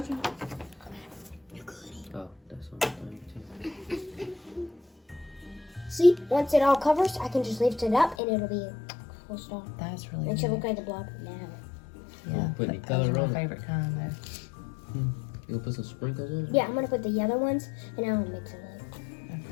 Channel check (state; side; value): drops out; right; at 8.2 s